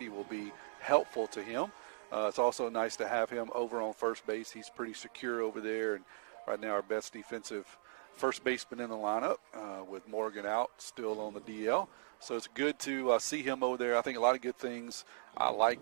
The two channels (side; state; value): left; silent; digital silence